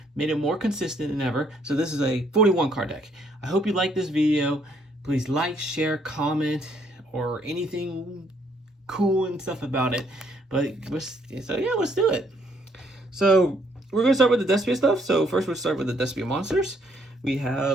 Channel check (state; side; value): normal; both; correlation 0.68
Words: made it more consistent than ever. So this is a 41 card deck. I hope you like this video. Please like, share, comment, or anything cool and stuff about it. Let's do it. So we're gonna start with the Despia stuff. So first we'll start with the Despia monsters. We